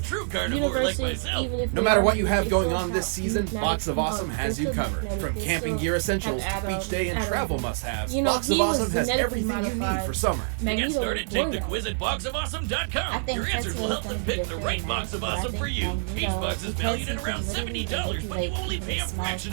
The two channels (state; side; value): silent; left; digital silence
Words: true carnivore like universes, myself. even if No they matter are what you have they going still on this have season, magnetic- Box of Awesome they're has you still covered. magnetic, From they camping still gear essentials have to beach day and atoms. travel must-haves, You know, Box of he was Awesome has genetically everything you need modified. for summer. To get Magneto started, was take born the that quiz way. at boxofawesome.com. I think Your answers will Tetsuo is help going them to be pick a the fair right match, box of but I awesome think for you. Each Magneto, box is because valued he at around can literally $70, but you manipulate only even pay the a smallest fraction